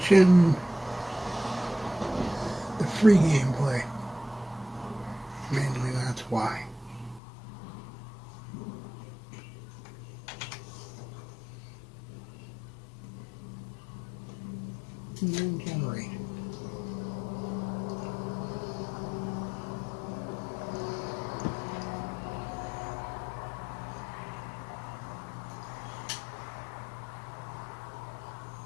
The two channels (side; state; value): right; drops out; at 7.2 s